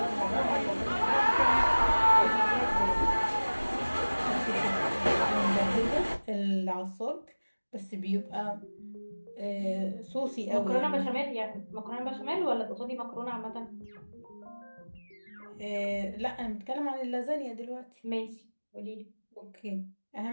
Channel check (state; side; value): inverted; both; correlation -1.00